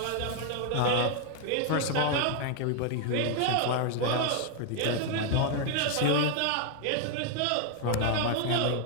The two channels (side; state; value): both; different; correlation 0.00